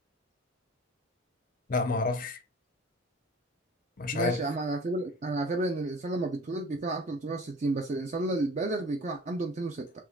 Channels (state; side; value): normal; both; correlation 0.43